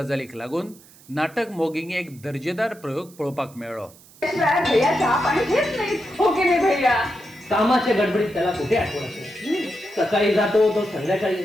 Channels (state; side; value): noise; right; hiss, 24 dB below the sound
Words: लागून नाटक मोगींग एक दर्जेदार प्रयोग पळोवपाक मेळ्ळो। भैया चहा पाणी घेत नाही हो की नाही भैया? कामाच्या गडबडीत त्याला कुठे आठवण असेल? सकाळी जातो तो संध्याकाळी